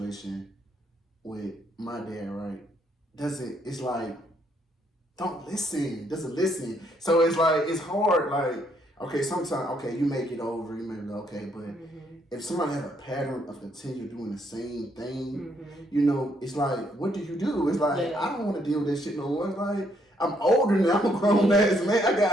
with my dad, right, doesn't listen. So it's like, it's hard. Like okay, sometimes, okay, you make it over, you make it okay, but if somebody has a pattern of continue doing the same thing, you know, it's like, what do you do? It's like, I don't want to deal with this shit no more. It's like, I'm older now, I'm a grown ass man. I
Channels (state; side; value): normal; both; correlation 0.72